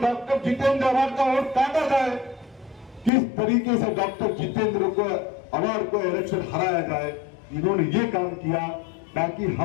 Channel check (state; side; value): drops out; right; at 3.1 s